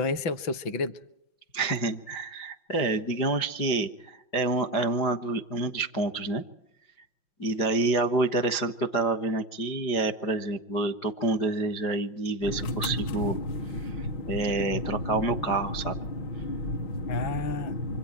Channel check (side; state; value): right; late; 5.6 ms